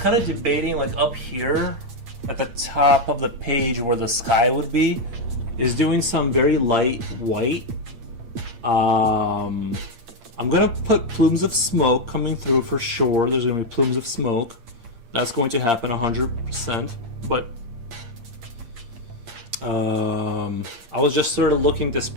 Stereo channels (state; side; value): late; left; 8.7 ms